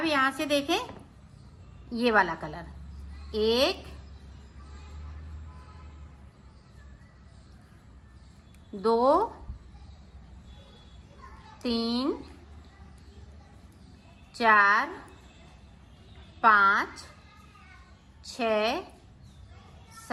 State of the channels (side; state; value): both; identical; correlation 1.00